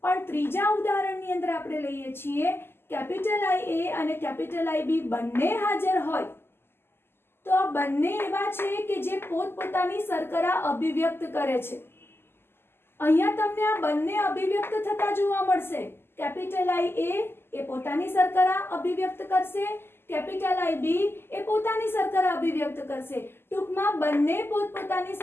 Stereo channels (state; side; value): late; right; 0.11 ms